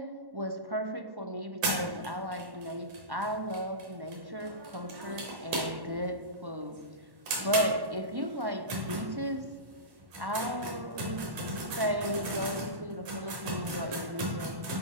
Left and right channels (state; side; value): late; left; 1.1 ms